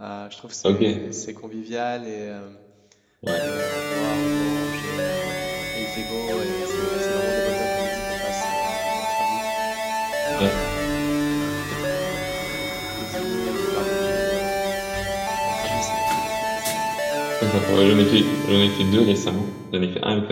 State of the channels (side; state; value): both; identical; correlation 1.00